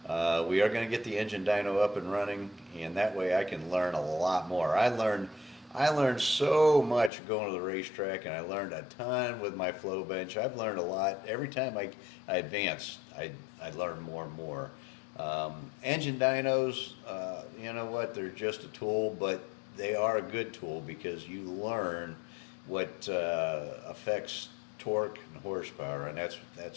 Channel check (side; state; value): right; drops out; at 7.1 s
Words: We are going to get the engine dyno up and running, and that way I can learn a lot more. I learned so much going to the racetrack, and I learned a ton with my flow bench. I've learned a lot. Every time I advance, I learn more and more. Engine dynos, you know what, they're just a tool, but they are a good tool because you learn what affects torque and horsepower, and that's